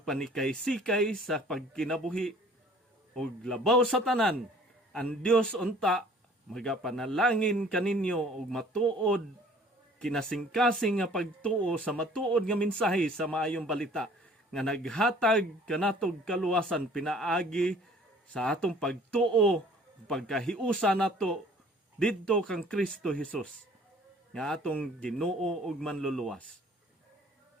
sa pagkinabuhi ug labaw sa tanan. Ang Dios unta magapanalangin kaninyo ug matuod kinasing-kasing nga pagtuo sa matuod nga mensahe sa maayong balita nga naghatag kanatog kaluwasan pinaagi sa atong pagtuo ug pagkahiusa nato didto kang Kristo Jesus nga atong Ginoo ug manluluwas.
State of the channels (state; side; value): normal; both; correlation 0.53